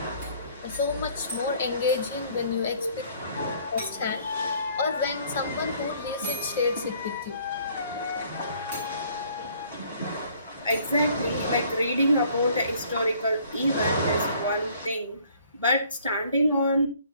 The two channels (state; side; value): inverted; both; correlation -0.59